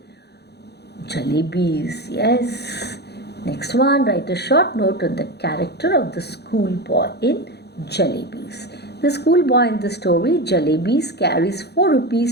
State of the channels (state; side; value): late; right; 0.48 ms